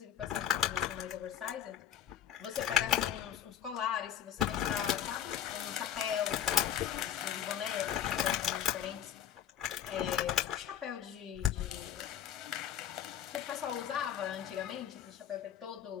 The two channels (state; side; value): quieter; right; 10.0 dB